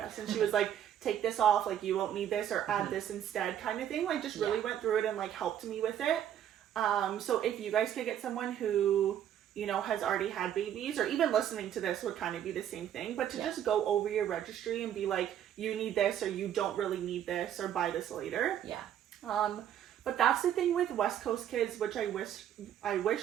And she was like, take this off, like you won't need this, or add this instead, kind of thing. Like just really went through it and like helped me with it. So if you guys could get someone who, you know, has already had babies, or even listening to this would kind of be the same thing, but to just go over your registry and be like, you need this, or you don't really need this, or buy this later. Yeah. But that's the thing with West Coast Kids, which I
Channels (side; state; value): left; quieter; 10.3 dB